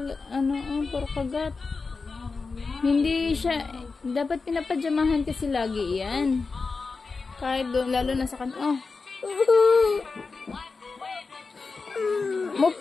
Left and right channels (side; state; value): right; quieter; 4.3 dB